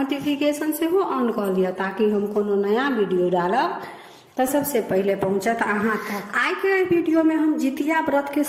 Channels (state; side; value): identical; both; correlation 1.00